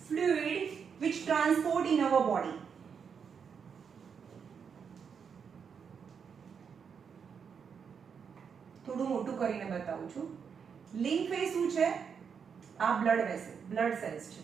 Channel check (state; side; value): quieter; left; 6.6 dB